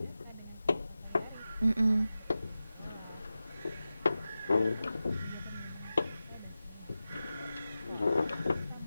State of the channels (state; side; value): inverted; both; correlation -0.94